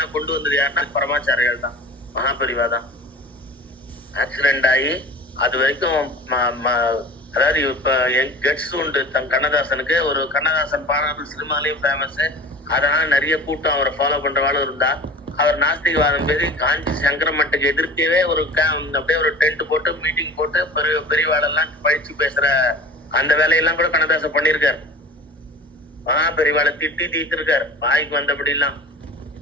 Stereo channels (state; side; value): normal; both; correlation 0.38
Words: கொண்டு வந்தது யாருன்னா பரமாச்சாரியால் தான், மகாபரிவா தான். ஆக்சிடென்ட் ஆகி அது வரைக்கும் அதாவது இப்ப கெட்ஸ் உண்டு கண்ணதாசனுக்கு. ஒரு கண்ணதாசன் பாடல்கள் சினிமாலையும் ஃபேமஸ். அதனால நிறைய கூட்டம் அவரை ஃபாலோ பண்றவாளும் இருந்தா. அவர் நாஸ்திகவாதம் பேசி காஞ்சி சங்கரமட்டுக்கு எதிர்க்கவே ஒரு அப்படியே ஒரு டென்ட் போட்டு மீட்டிங் போட்டு பெரியவாளெல்லாம் பழிச்சு பேசுற அந்த வேலையெல்லாம் கூட கண்ணதாசன் பண்ணிருக்காரு. பெரியவாளை திட்டி தீர்த்திருக்காரு வாய்க்கு வந்தபடி எல்லாம்.